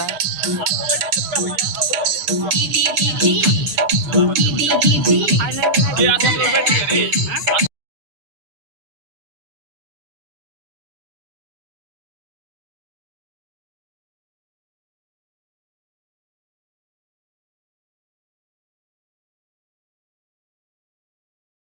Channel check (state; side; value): late; left; 7.0 ms